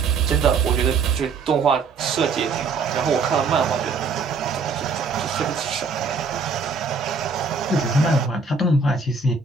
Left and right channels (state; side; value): quieter; left; 4.8 dB